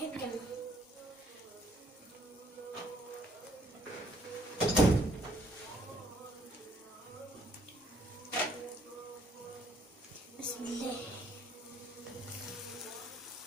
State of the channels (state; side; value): normal; both; correlation 0.65